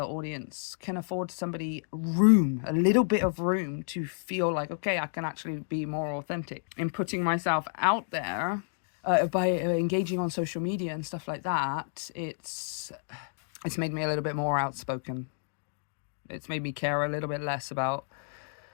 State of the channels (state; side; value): silent; right; digital silence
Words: audience can afford somebody room, a little bit of room to feel like, okay, I can actually be more authentic in putting myself out there. By engaging on social media and stuff like that, it's made me a little bit more outspoken. It's made me care a little bit less about